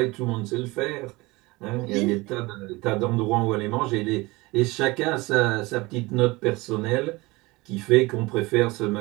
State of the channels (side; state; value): left; quieter; 22.6 dB